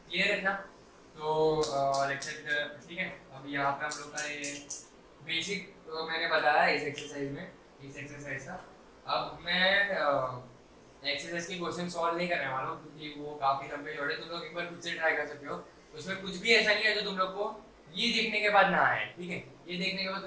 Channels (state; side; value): identical; both; correlation 1.00